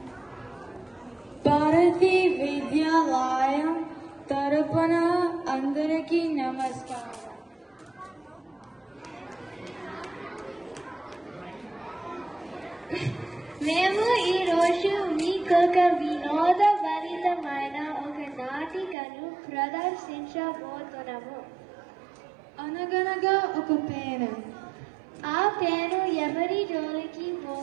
Bharati Vidyalayam తరపున అందరికీ నమస్కారం. మేము ఈరోజు మీకొక వినోదభరితమైన ఒక నాటికను ప్రదర్శించబోతున్నాము. అనగనగా ఒక పేను. ఆ పేను ఎవరి జోలికి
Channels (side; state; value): left; drops out; at 18.9 s